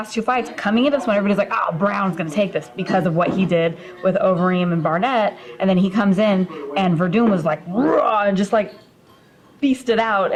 two fights, coming into this one, everybody's like, oh, Browne's going to take this because of what he did with Overeem and Barnett. And then he comes in, and Werdum was like, raw, and just like beasted out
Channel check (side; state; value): both; identical; correlation 1.00